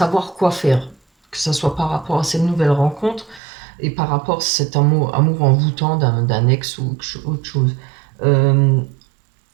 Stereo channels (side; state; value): left; drops out; at 3.4 s